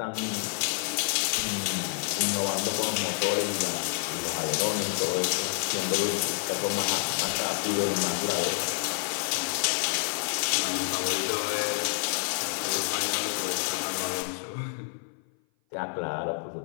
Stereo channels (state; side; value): silent; right; 56 dB below the other